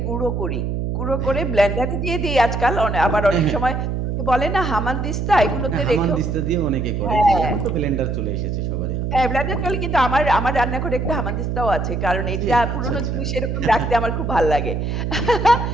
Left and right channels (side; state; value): right; noise; hum, 2 dB below the sound